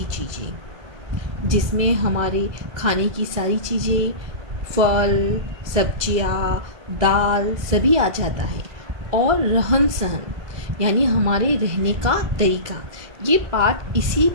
चीज़ें, जिसमें हमारे खाने की सारी चीज़ें, फल, सब्जियाँ, दाल सभी आ जाता है। और रहन सहन यानी हमारे रहने का तरीका, ये पाठ इसी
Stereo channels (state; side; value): late; left; 1.5 ms